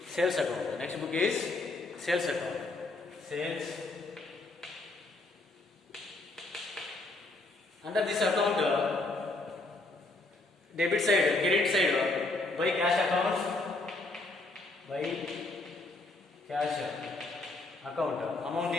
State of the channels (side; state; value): right; quieter; 3.0 dB